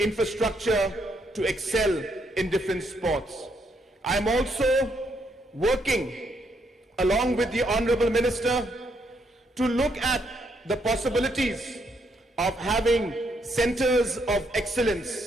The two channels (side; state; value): both; normal; correlation 0.75